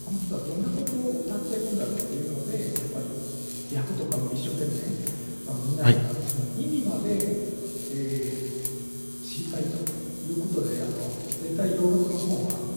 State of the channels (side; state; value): both; inverted; correlation -1.00